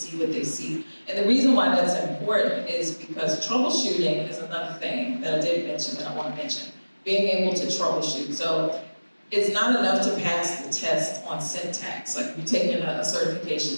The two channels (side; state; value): both; inverted; correlation -1.00